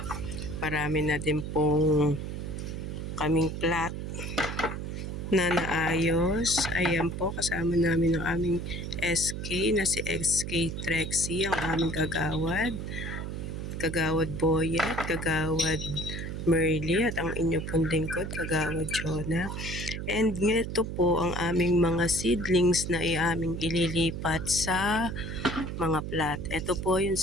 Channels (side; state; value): right; noise; hum, 5 dB below the sound